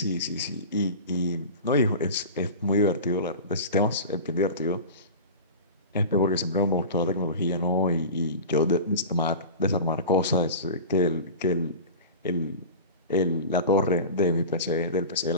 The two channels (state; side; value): inverted; both; correlation -0.32